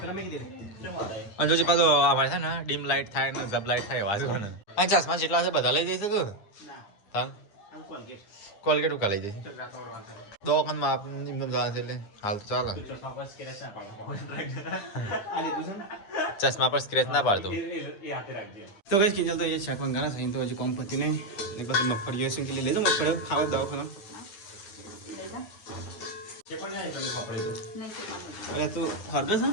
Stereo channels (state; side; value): late; right; 9.7 ms